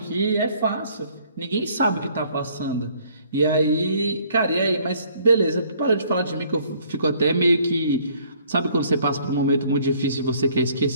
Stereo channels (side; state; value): both; inverted; correlation -0.61